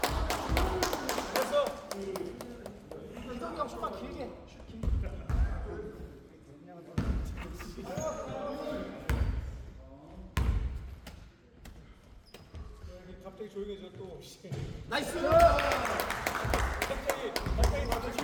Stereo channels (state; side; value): identical; both; correlation 1.00